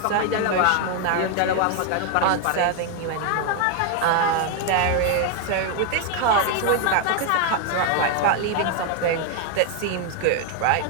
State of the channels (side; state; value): both; different; correlation 0.01